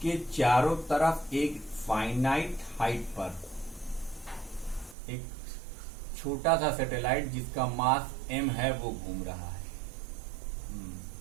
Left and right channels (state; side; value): drops out; left; at 5.0 s